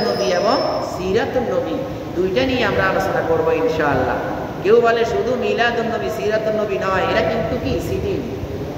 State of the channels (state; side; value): identical; both; correlation 1.00